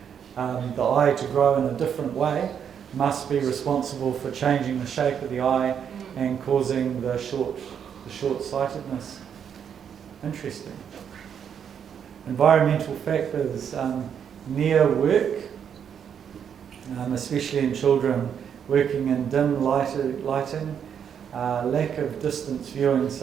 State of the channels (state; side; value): quieter; left; 8.0 dB